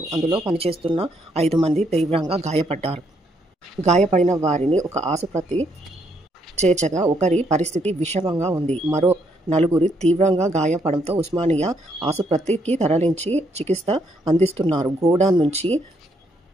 అందులో పనిచేస్తున్న 5 మంది తీవ్రంగా గాయపడ్డారు. గాయపడిన వారిని ఒక ఆసుపత్రి చేర్చగా ఒకరి పరిస్థితి విషమంగా ఉంది. మరో 4 తీవ్రంగా గాయపడంతో ఉస్మానియా ఆసుపత్రికి తరలించి చికిత్స అందిస్తున్నారు. గోడౌన్ నుంచి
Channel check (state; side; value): normal; both; correlation 0.73